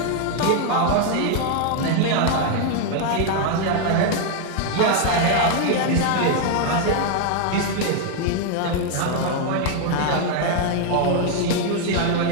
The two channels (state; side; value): different; both; correlation 0.00